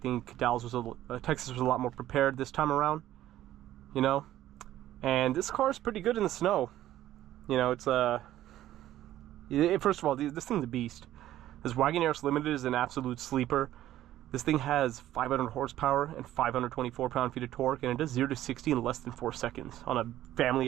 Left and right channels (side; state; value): left; quieter; 13.4 dB